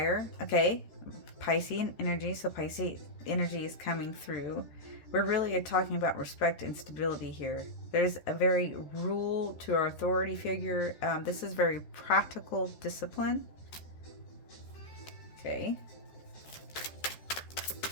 Okay. Piscean energy. So Piscean energy is coming through. We're really talking about respect and stability here. There's a very rule to our authority figure. This is very practical discipline. Okay.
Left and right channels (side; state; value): right; late; 14 ms